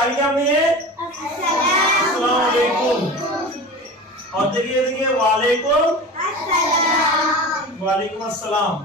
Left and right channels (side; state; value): both; normal; correlation 0.33